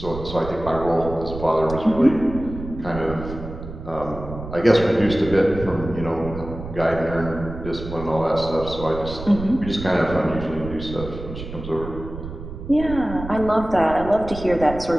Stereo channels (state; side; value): noise; right; rumble, 10 dB below the sound